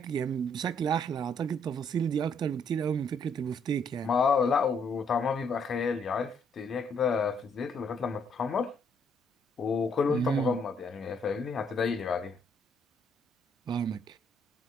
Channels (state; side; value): normal; both; correlation 0.69